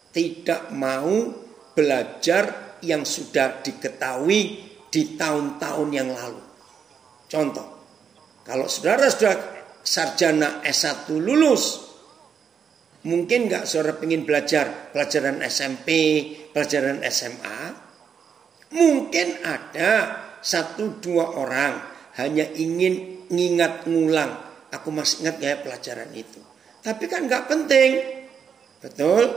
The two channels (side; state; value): left; quieter; 7.0 dB